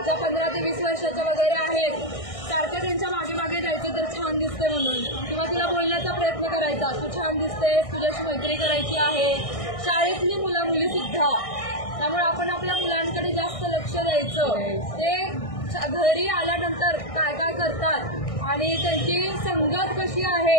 ज्या 15 ते 20 वर्षाच्या वगैरे आहेत, सारखं त्यांच्या मागे मागे जायचं तर छान दिसते म्हणून, किंवा तिला बोलण्याचा प्रयत्न करायचा, तू छान दिसतेस, तुझ्याशी मैत्री करायची आहे. शाळेतली मुलं मुली सुद्धा. त्यामुळे आपण आपल्या मुलांकडे जास्त लक्ष द्यायचं. ते घरी आल्यानंतर काय काय करतात आणि त्यांची संगत कशी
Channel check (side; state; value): right; late; 1.6 ms